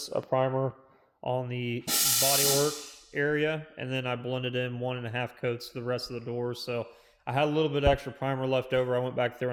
of primer on the bodywork area, and then I blended in 1.5 coats to the rest of the doors. So I had a little bit extra primer left over. I went back there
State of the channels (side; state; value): both; identical; correlation 1.00